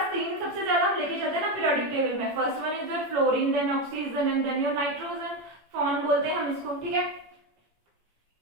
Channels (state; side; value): late; left; 18 ms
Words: 3 सबसे ज्यादा हम लेके चलते हैं ना पीरियोडिक टेबल में, first one is your fluorine, then oxygen and then your nitrogen, फॉन बोलते हैं हम इसको, ठीक है।